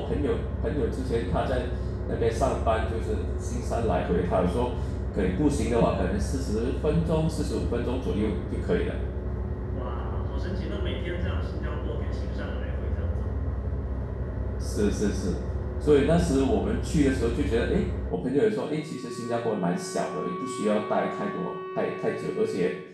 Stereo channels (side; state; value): both; identical; correlation 1.00